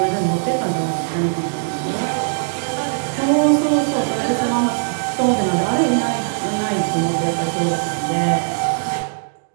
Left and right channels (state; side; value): silent; left; 66 dB below the other